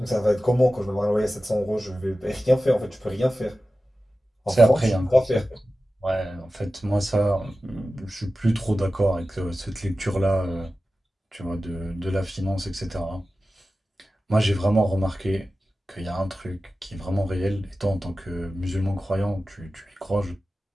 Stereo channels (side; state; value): both; normal; correlation 0.95